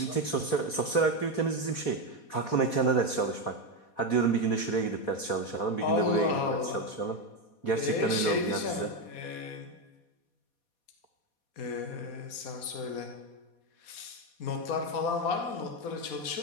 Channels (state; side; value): late; right; 4.2 ms